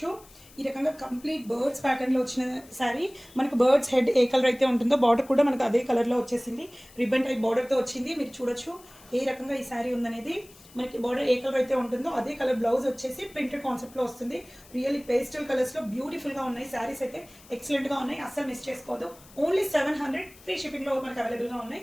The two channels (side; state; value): left; noise; hiss, 23 dB below the sound